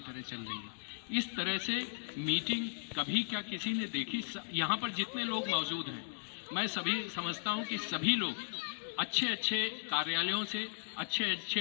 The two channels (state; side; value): silent; right; digital silence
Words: तरह चल रही है। इस तरह से मीटिंग कभी क्या किसी ने देखी? यहाँ पर जितने लोग मौजूद हैं, मैं सभी समझता हूँ कि सभी लोग अच्छे अच्छे कार्यालयों से, अच्छे